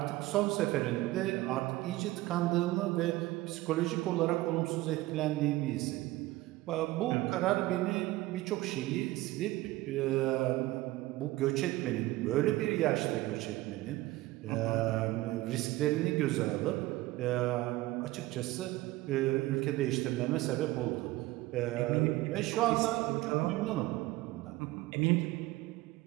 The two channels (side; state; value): left; quieter; 18.1 dB